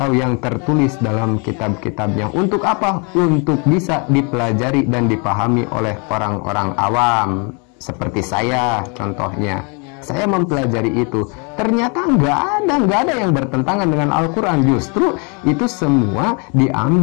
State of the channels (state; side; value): quieter; right; 34.4 dB